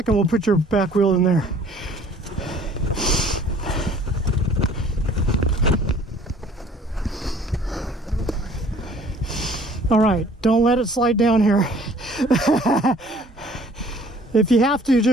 We'll put your back wheel in there. All right, don't let it slide down here. If you have to,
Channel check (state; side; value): normal; both; correlation 0.54